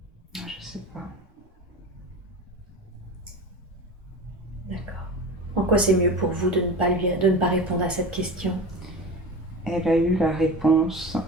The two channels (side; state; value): both; normal; correlation 0.31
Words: Je sais pas. D'accord. En quoi c'est mieux pour vous de ne pas répondre à cette question? Elle a eu la réponse